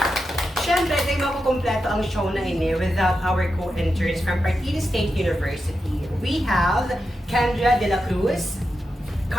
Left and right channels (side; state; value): both; normal; correlation 0.88